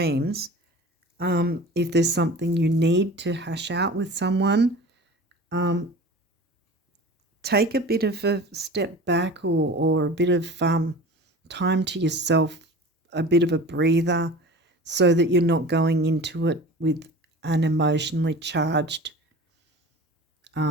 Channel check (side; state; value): both; normal; correlation 0.38